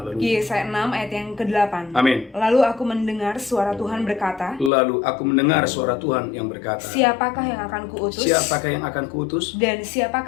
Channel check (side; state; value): right; drops out; at 4.7 s